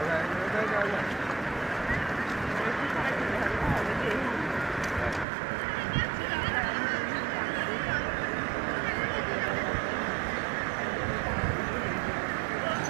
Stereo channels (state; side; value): drops out; left; at 5.2 s